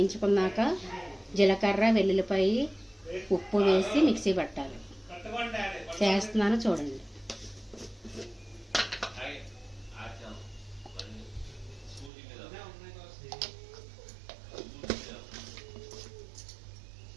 జీలకర్ర, వెల్లుల్లిపాయి, ఉప్పు వేసి మిక్సీ పట్టాలి. చేస్తున్నాను చూడండి.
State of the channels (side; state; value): left; drops out; at 12.1 s